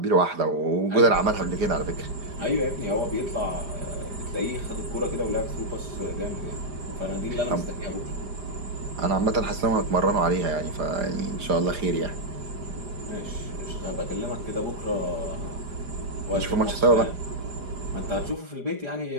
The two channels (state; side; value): late; left; 4.9 ms